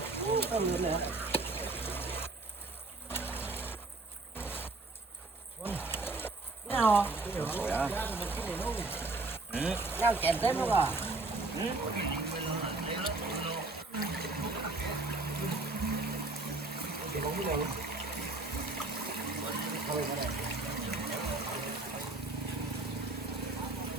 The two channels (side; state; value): left; quieter; 3.3 dB